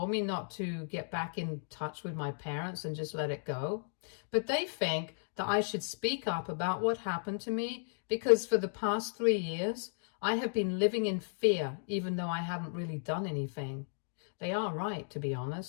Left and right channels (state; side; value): silent; right; digital silence